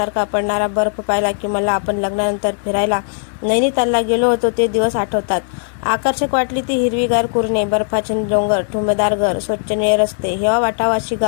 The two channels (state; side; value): silent; right; digital silence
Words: पडणारा बर्फ पाहिला की मला आपण लग्नानंतर फिरायला नैनितालला गेलो होतो ते दिवस आठवतात. आकर्षक वाटली ती हिरवीगार कुरणे, बर्फाचे डोंगर, ठुमदार घर, स्वच्छ निळे रस्ते, हेवा वाटावाशी